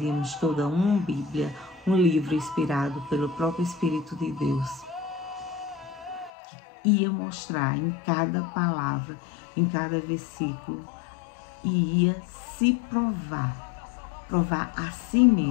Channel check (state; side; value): drops out; right; at 6.3 s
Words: toda uma Bíblia, um livro inspirado pelo próprio Espírito de Deus, que ia mostrar em cada palavra, em cada versículo, e ia se provar a si